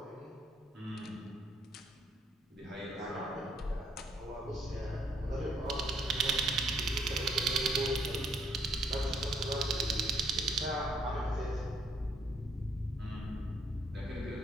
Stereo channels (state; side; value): normal; both; correlation 0.68